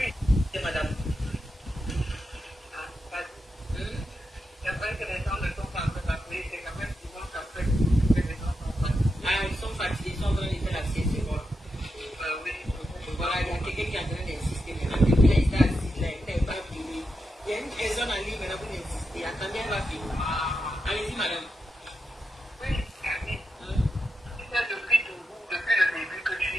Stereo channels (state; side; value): normal; both; correlation 0.87